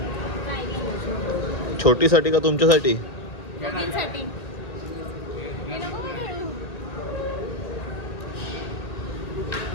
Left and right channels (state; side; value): late; right; 1.8 ms